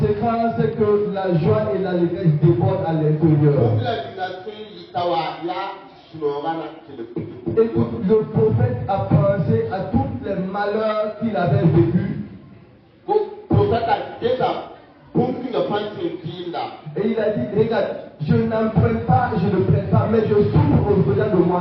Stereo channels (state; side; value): identical; both; correlation 1.00